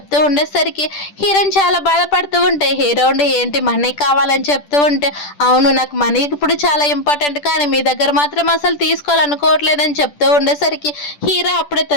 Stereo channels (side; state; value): right; late; 10 ms